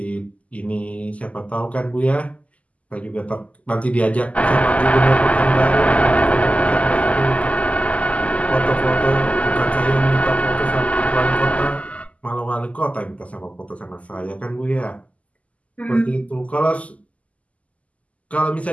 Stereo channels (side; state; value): right; late; 0.068 ms